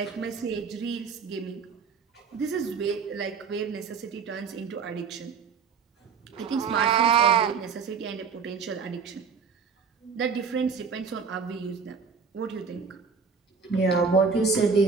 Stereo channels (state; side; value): quieter; left; 5.7 dB